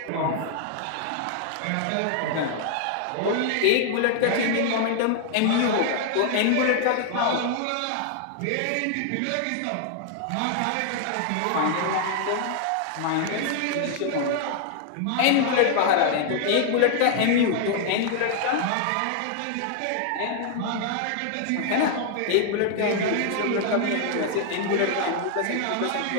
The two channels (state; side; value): different; both; correlation 0.00